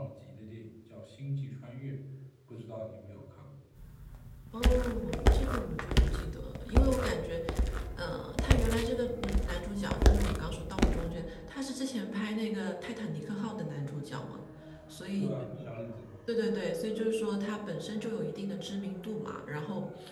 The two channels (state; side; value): identical; both; correlation 1.00